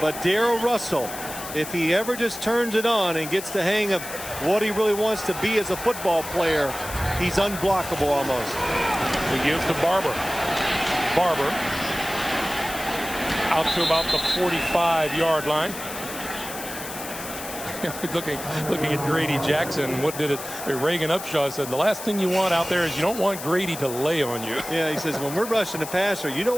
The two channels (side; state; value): left; noise; hiss, 10 dB below the sound